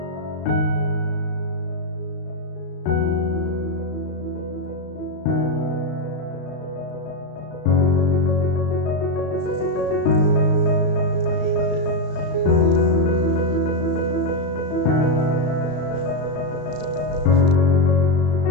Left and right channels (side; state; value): right; late; 34 ms